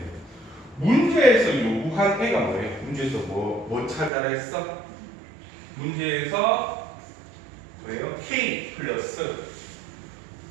문제에서 요구한 애가 뭐예요? 문제에서 뭐 찾아라 했어? 문제에서 뭐예요? K 플러스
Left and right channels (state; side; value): drops out; left; at 4.1 s